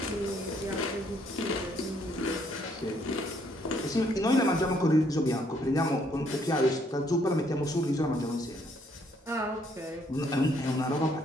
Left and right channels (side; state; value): both; normal; correlation 0.68